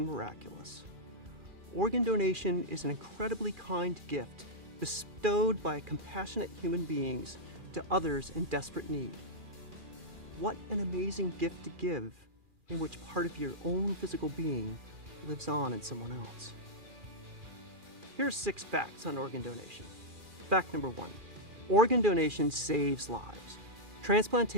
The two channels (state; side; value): late; left; 2.4 ms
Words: miraculous. Organ donation is an incredibly kind gift bestowed by compassionate human beings to others in desperate need. What an amazing gift to give, in which part of your own physical being lives on in someone else. Here are 6 facts on organ donation. Fact number 1, organ donation saves lives.